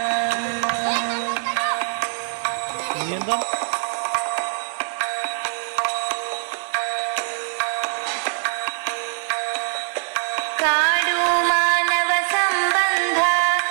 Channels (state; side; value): silent; left; 57 dB below the other